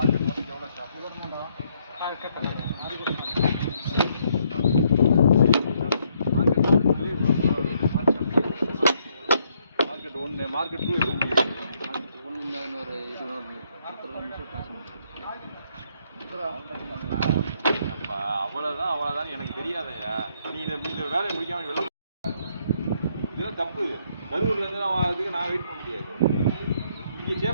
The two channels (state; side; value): inverted; both; correlation -0.71